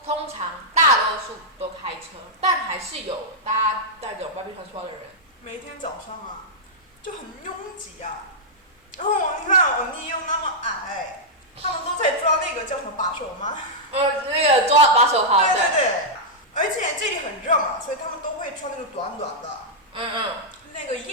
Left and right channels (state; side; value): normal; both; correlation -0.08